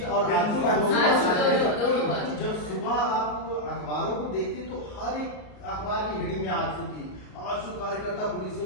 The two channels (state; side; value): late; right; 34 ms